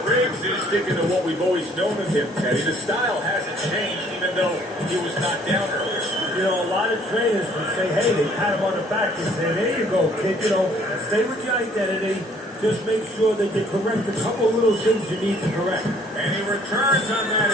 Briggs is sticking to what we've always known of him, Teddy. The style hasn't changed, even though he was knocked down earlier. You know, a lot of trainers would say, hey, they pat him on the back and say, there you go, kid. You know, stay with your identity. Just make sure that you correct a couple of little things you need to correct. And he returns on that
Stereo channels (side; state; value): both; normal; correlation 0.59